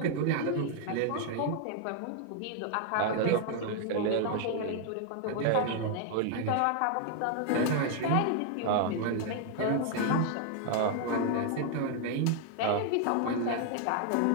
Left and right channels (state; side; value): different; both; correlation 0.00